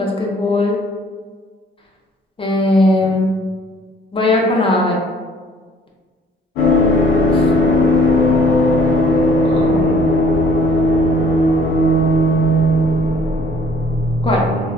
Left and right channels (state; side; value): normal; both; correlation 0.57